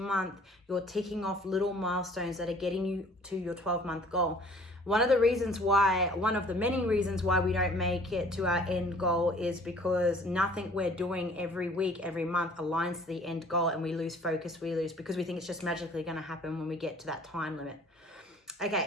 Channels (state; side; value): normal; both; correlation 0.54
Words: you're ticking off little milestones that are getting you to your 12-month goal. One of the many reasons why we don't make it to our end goal is because nothing we're doing every week, every month aligns to the end goal, and we lose focus, because we think it's just magically going to happen when we get to that time limit.